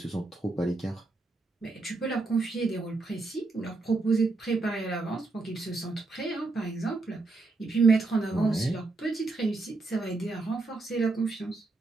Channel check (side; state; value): left; quieter; 3.6 dB